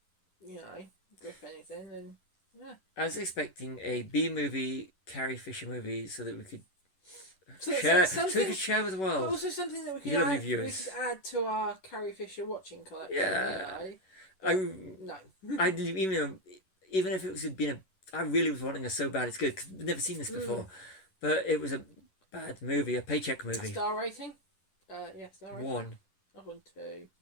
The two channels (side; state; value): right; late; 11 ms